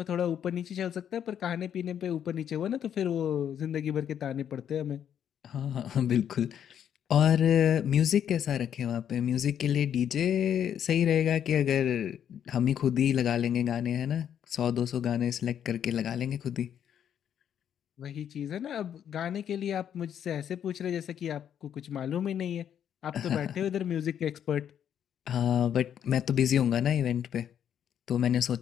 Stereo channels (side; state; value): right; quieter; 9.2 dB